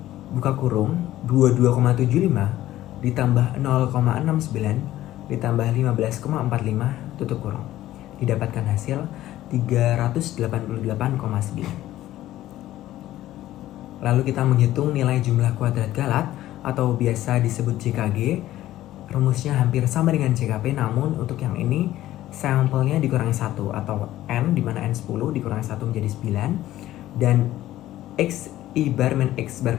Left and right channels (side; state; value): right; quieter; 14.4 dB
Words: buka kurung 22,75 ditambah 0,69 ditambah 15,45 tutup kurung, didapatkan hasil 388,9. Lalu kita menghitung nilai jumlah kuadrat Galat atau biasa disebut JKG. Rumusnya hampir sama dengan JKP, namun untuk yang ini sampelnya dikurangi 1 atau N, di mana N 10 dikurangi 1 menjadi 9, dan I bar min X